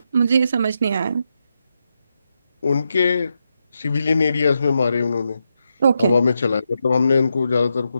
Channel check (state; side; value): inverted; both; correlation -0.84